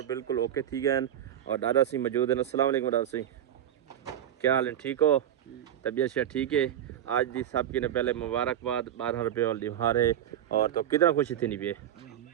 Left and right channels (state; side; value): quieter; left; 10.7 dB